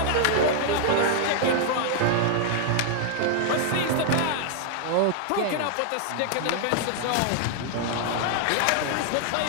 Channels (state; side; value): different; both; correlation 0.00